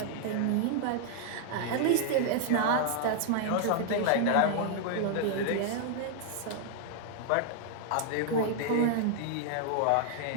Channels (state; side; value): different; both; correlation 0.00